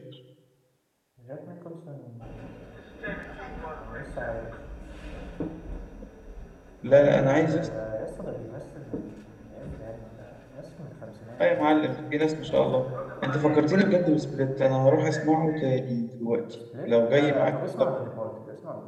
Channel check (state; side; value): identical; both; correlation 1.00